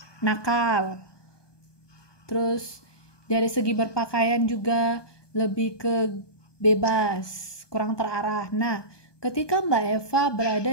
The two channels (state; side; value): late; right; 1.2 ms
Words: nakal, terus dari segi berpakaian juga lebih ke bebas, kurang terarah. Nah, ketika Mbak Eva